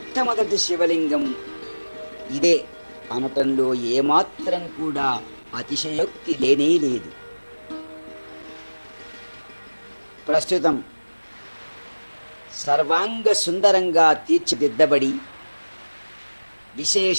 శివలింగం ఇదే అనటంలో ఏమాత్రం కూడా అతిశయోక్తి లేనే లేదు. ప్రస్తుతం సర్వాంగ సుందరంగా తీర్చిదిద్దబడి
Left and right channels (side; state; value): both; inverted; correlation -1.00